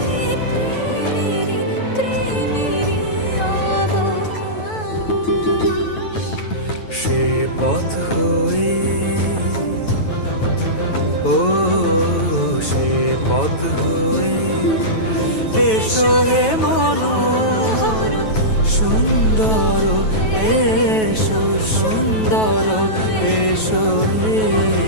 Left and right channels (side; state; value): right; late; 9.2 ms